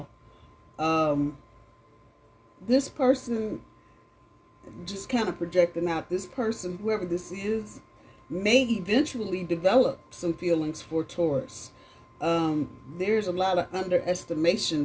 This person, just kind of projecting out, this person, whoever this is, may eventually develop some feelings for Taurus. There's a lot of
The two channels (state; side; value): identical; both; correlation 1.00